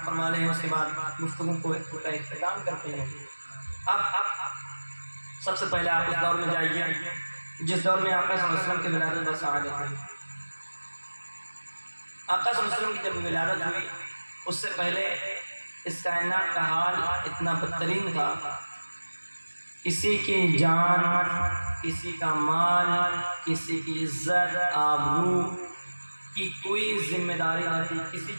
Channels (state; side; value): inverted; both; correlation -1.00